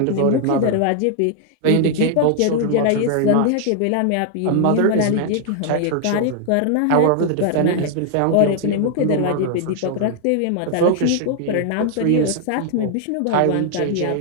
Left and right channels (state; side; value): different; both; correlation 0.00